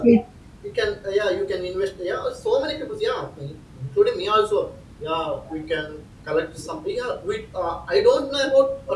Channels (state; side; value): identical; both; correlation 1.00